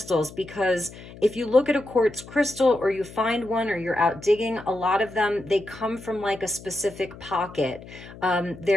because if you look at a quartz crystal or you find one or you're out digging, a lot of them, they come from like a specific pocket.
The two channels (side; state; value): left; noise; hum, 17 dB below the sound